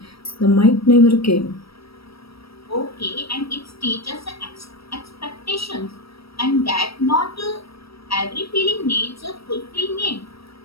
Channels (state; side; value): late; right; 0.76 ms